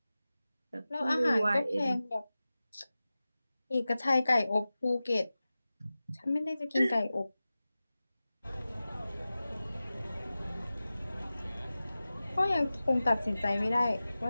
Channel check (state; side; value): inverted; both; correlation -0.96